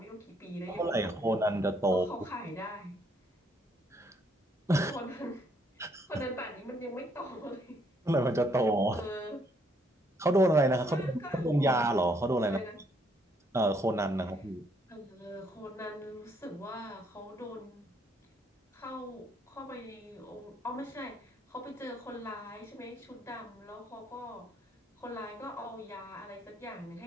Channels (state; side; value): normal; both; correlation 0.69